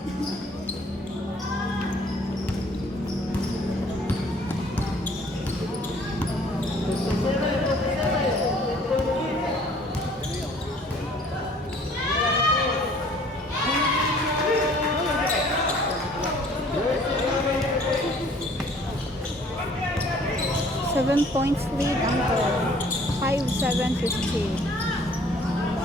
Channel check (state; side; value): normal; both; correlation 0.56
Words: Seven points lead ang goal. 5-7-15.